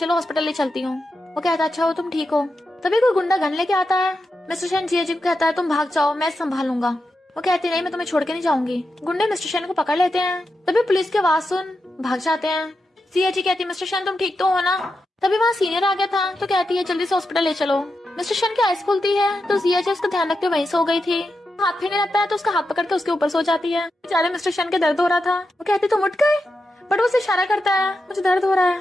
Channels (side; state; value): both; normal; correlation 0.88